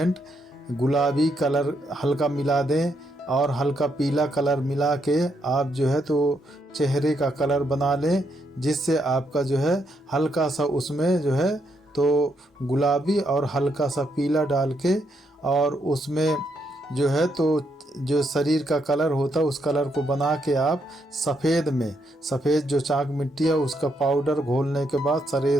गुलाबी कलर हल्का मिला दें और हल्का पीला कलर मिला के आप जो है तो चेहरे का कलर बना लें, जिससे आपका जो है हल्का सा उसमें जो है तो गुलाबी और हल्का सा पीला डाल के और उसमें जो है तो जो शरीर का कलर होता है उस कलर को बना के आप सफ़ेद जो चाक मिट्टी है उसका पाउडर घोलने के बाद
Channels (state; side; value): normal; both; correlation 0.77